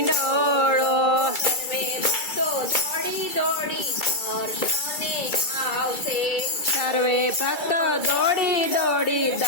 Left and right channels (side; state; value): right; late; 2.3 ms